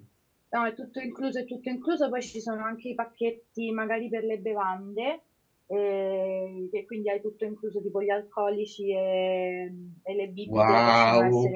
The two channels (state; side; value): identical; both; correlation 1.00